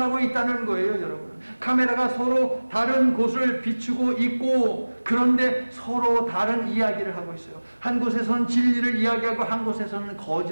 있다는 거예요. 여러분. 카메라가 서로 다른 곳을 비추고 있고 그런데 서로 다른 이야기를 하고 있어요. 한 곳에서는 진리를 이야기하고 한 곳에서는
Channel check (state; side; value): inverted; both; correlation -1.00